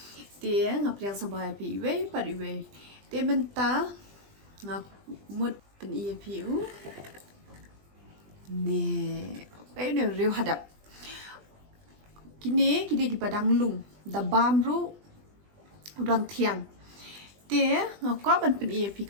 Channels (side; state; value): left; late; 20 ms